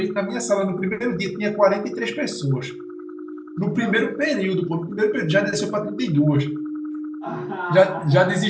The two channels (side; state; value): both; identical; correlation 1.00